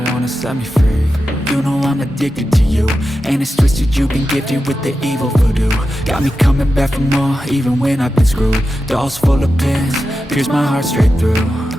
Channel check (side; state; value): both; normal; correlation 0.91